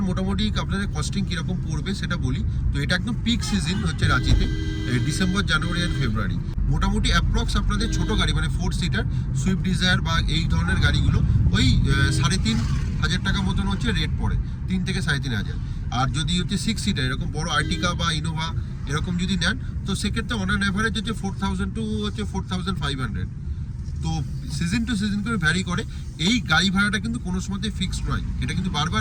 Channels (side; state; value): both; identical; correlation 1.00